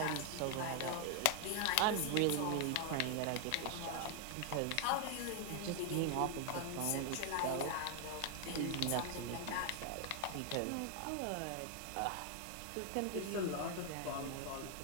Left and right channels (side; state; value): both; different; correlation 0.00